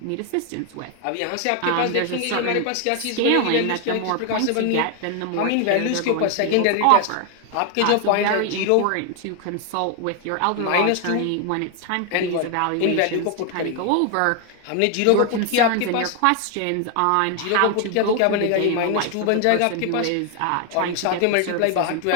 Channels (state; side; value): different; both; correlation 0.01